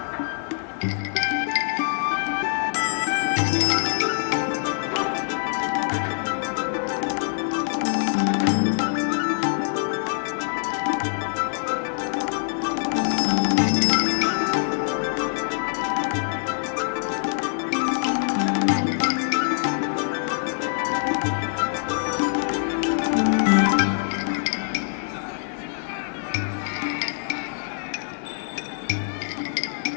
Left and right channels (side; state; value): right; silent; 62 dB below the other